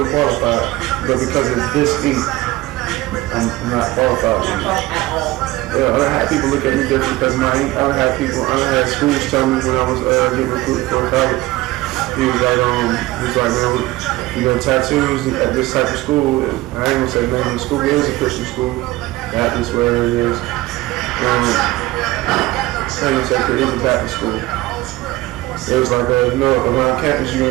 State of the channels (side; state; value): left; quieter; 18.4 dB